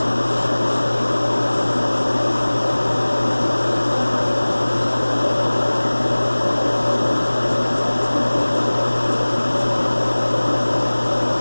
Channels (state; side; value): inverted; both; correlation -1.00